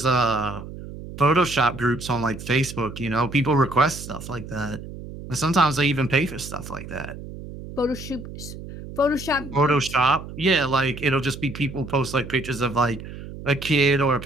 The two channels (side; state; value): right; noise; hum, 12 dB below the sound